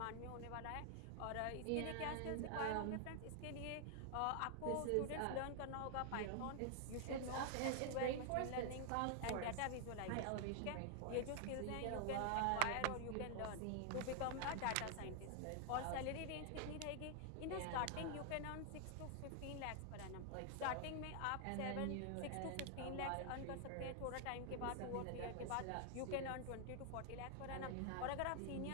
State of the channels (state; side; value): different; both; correlation 0.00